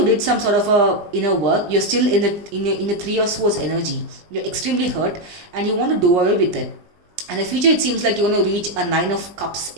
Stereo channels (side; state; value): left; late; 19 ms